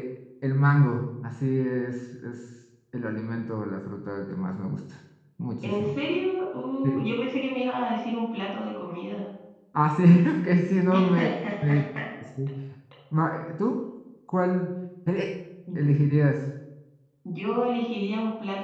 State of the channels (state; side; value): identical; both; correlation 1.00